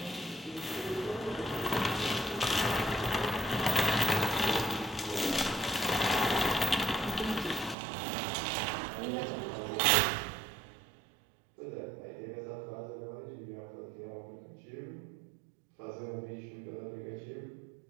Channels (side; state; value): left; drops out; at 7.8 s